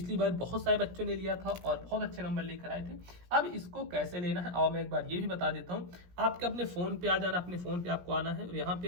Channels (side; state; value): left; late; 17 ms